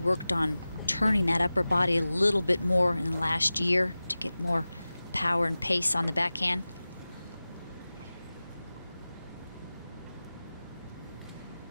on turning that upper body a little bit more in the last year to get more power and pace on the backhand.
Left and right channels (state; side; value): inverted; both; correlation -0.97